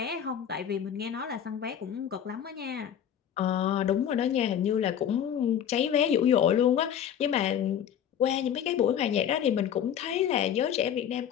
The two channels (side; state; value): right; quieter; 9.2 dB